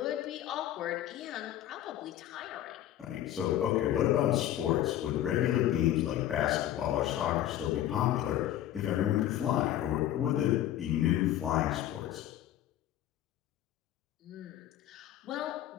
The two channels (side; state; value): right; quieter; 12.5 dB